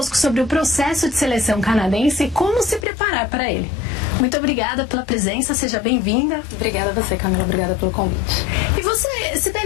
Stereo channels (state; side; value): drops out; right; at 2.9 s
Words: sobre o processo de seleção canadense e como se preparar para ele. Muito obrigada pela presença, seja bem-vinda. Obrigada a você, Camila, obrigada pelo convite. E você,